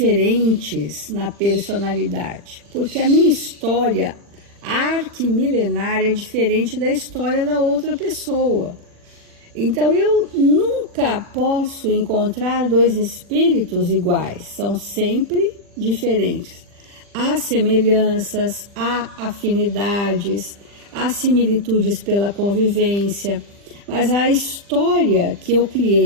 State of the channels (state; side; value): late; left; 40 ms